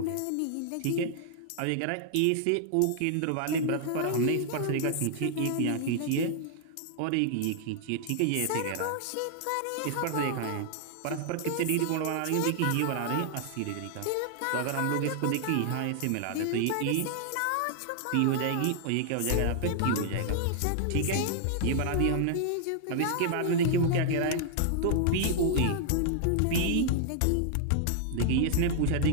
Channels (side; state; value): both; different; correlation -0.01